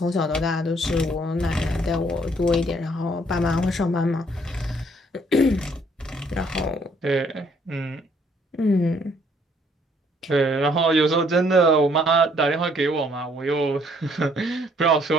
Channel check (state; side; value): normal; both; correlation 0.65